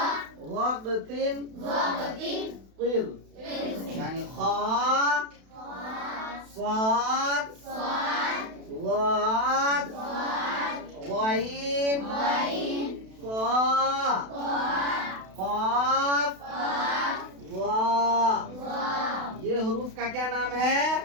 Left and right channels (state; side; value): late; left; 32 ms